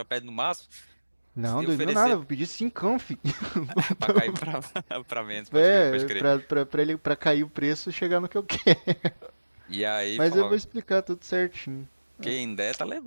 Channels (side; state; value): both; inverted; correlation -1.00